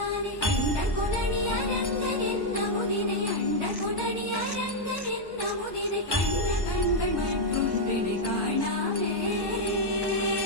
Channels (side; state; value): right; late; 1.1 ms